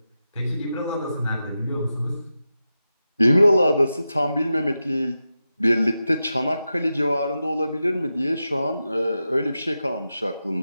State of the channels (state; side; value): inverted; both; correlation -0.90